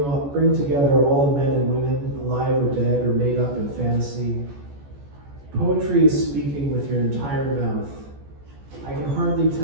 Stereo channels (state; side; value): late; left; 14 ms